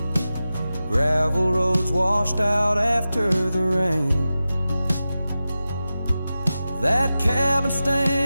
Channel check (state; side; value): inverted; both; correlation -0.94